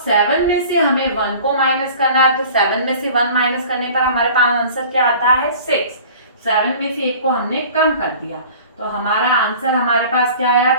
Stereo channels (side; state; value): both; inverted; correlation -0.44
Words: 7 में से हमें 1 को माइनस करना है। तो 7 में से 1 माइनस करने पर हमारे पास आंसर क्या आता है, 6। 7 में से 1 को हमने कम कर दिया तो हमारा आंसर हमारे पास क्या आया,